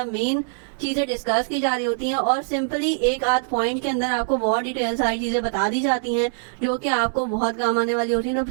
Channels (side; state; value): left; silent; digital silence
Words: मेन चीज़ें डिस्कस की जा रही होती हैं और सिंपली एक आध पॉइंट के अंदर आपको बहुत डिटेल सारी चीज़ें बता दी जाती हैं जो कि आपको बहुत काम आने वाली होती हैं। तो